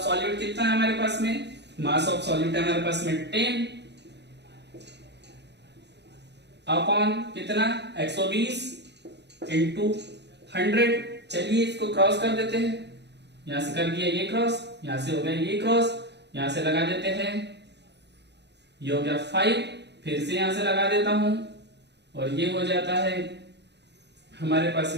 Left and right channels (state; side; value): late; left; 0.50 ms